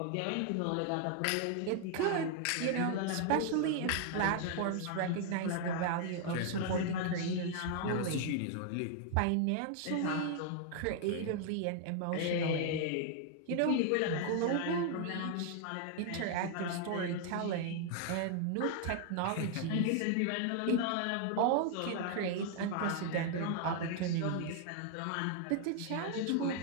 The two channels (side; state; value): both; different; correlation 0.00